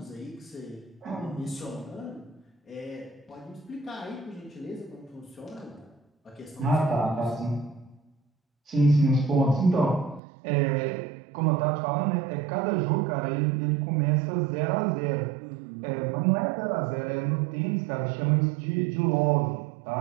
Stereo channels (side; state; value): left; drops out; at 10.2 s